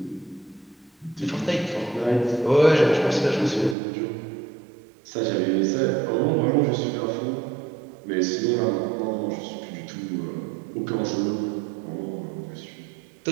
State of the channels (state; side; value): drops out; left; at 3.8 s